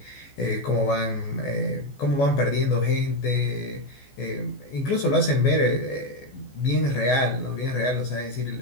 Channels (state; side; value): late; right; 14 ms